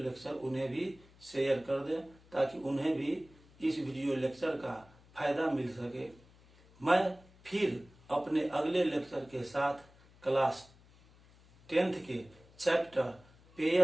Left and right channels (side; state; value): left; noise; hum, 26 dB below the sound